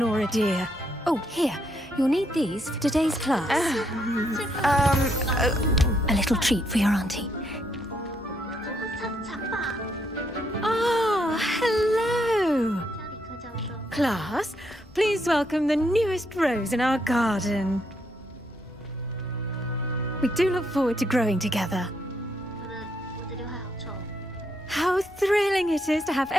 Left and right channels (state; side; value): normal; both; correlation 0.75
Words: dear. Oh, here. You'll need these for today's class. A little treat for your auntie. Ah, hello. Class, please welcome the newest rose in our garden. We do look forward to growing together. How thrilling it is to have